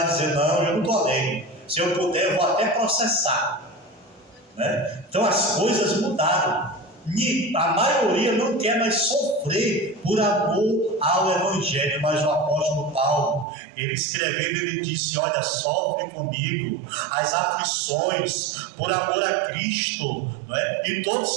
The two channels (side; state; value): left; drops out; at 13.5 s